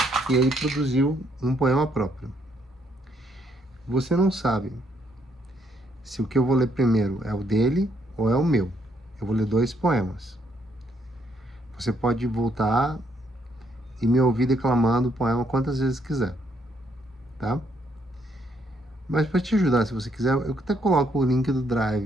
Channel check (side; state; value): both; normal; correlation 0.72